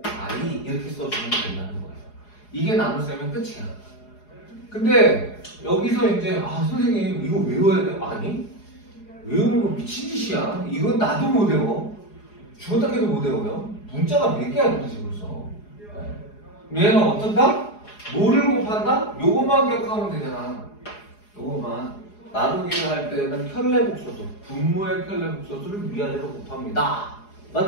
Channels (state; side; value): late; right; 4.8 ms